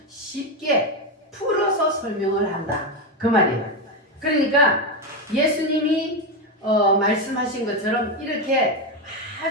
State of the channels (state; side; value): normal; both; correlation 0.10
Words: 쉽게 풀어서 설명을 한다. 그 말이에요. 그러니까 예수님이 말씀하신 것처럼 이렇게